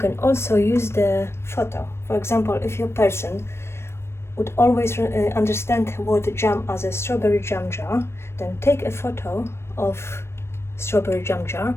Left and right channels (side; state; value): right; late; 0.12 ms